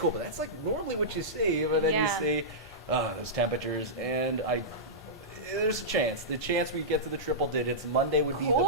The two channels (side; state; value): both; normal; correlation -0.14